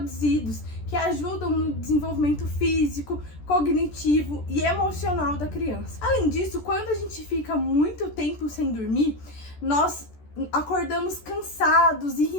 que ajudam no desenvolvimento físico, cognitivo e emocional da criança. Além disso, quando a gente fica muito tempo sem dormir, nós acordamos cansados,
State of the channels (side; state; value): right; late; 14 ms